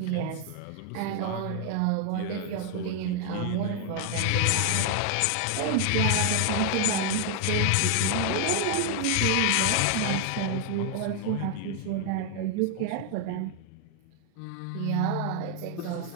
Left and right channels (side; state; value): both; different; correlation 0.00